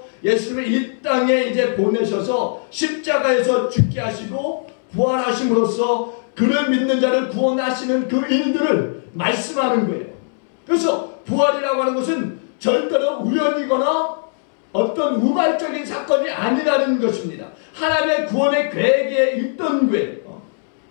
예수를 이 땅에 이제 보내셔서 십자가에서 죽게 하시고 부활하심으로써 그를 믿는 자를 구원하시는 그 일들을 말씀하는 거예요. 그래서 부활이라고 하는 것은 절대로 우연이거나 어떤 우발적인 사건이 아니라는 것입니다. 하나님의 구원의 계획에 있던 거예요.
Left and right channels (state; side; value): silent; right; 66 dB below the other